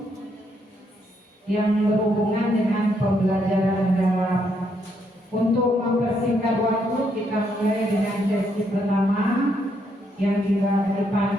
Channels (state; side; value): normal; both; correlation 0.75